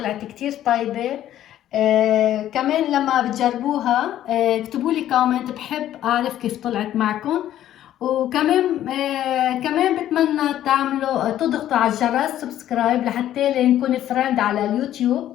كتير طيبة. كمان لما بتجربوها اكتبوا لي كومنت، بحب أعرف كيف طلعت معكم. وكمان كمان بتمنى تعملوا تضغطوا على الجرس سبسكرايب لحتى نكون فريند على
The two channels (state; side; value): quieter; right; 12.1 dB